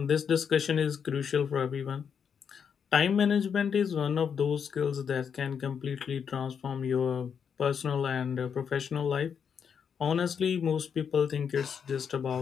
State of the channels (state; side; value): quieter; right; 7.1 dB